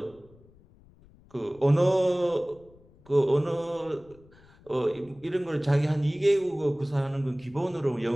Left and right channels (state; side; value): noise; left; rumble, 27 dB below the sound